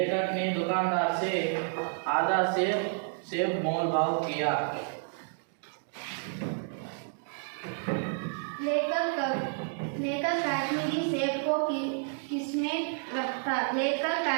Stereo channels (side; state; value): left; silent; 56 dB below the other